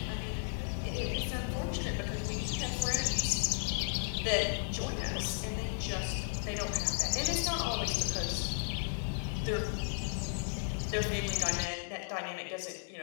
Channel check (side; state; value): right; silent; digital silence